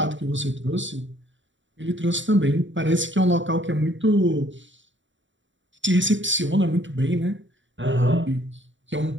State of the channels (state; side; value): late; left; 0.55 ms